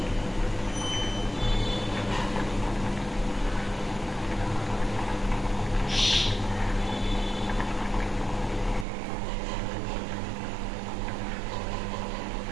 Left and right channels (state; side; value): drops out; left; at 8.8 s